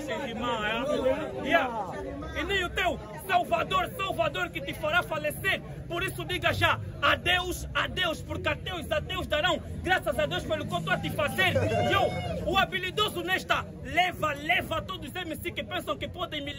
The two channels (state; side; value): identical; both; correlation 1.00